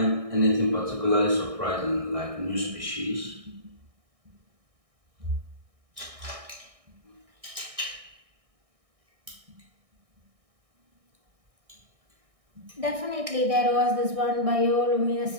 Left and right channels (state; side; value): late; left; 1.6 ms